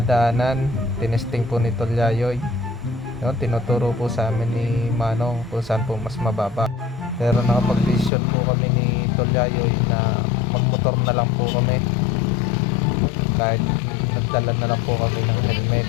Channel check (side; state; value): right; drops out; at 8.1 s